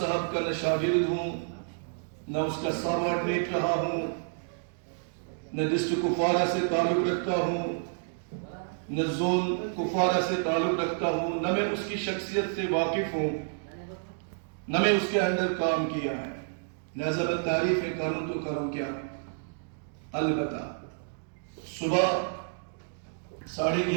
کا نہ شاگرد ہوں، نہ اس کا سابارڈینیٹ رہا ہوں، نہ ڈسٹرکٹ کپوارہ سے تعلق رکھتا ہوں، نہ زون کپوارہ سے تعلق رکھتا ہوں، نہ میں اس کی شخصیت سے واقف ہوں، نہ میں اس کے اندر کام کیا ہے، لہذا میں تعریف کروں تو کروں کیا۔ البتہ صبح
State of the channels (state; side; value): silent; left; digital silence